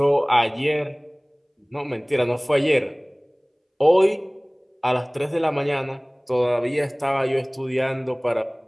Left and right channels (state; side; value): identical; both; correlation 1.00